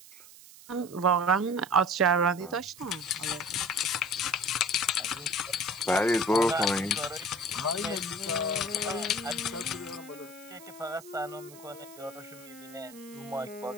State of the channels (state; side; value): noise; right; hiss, 19 dB below the sound